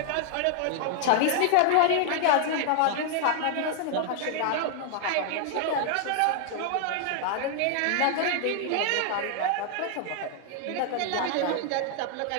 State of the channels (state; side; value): different; both; correlation 0.00